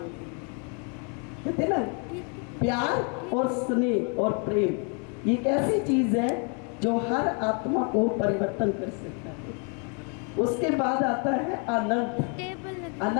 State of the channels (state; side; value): quieter; right; 37.9 dB